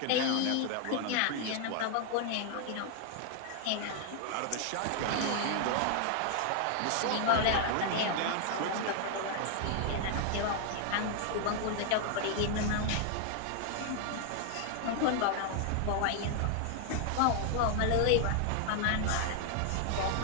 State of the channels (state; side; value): different; both; correlation 0.00